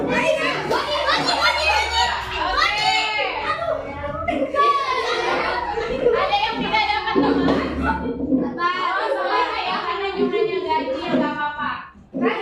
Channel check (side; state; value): both; identical; correlation 1.00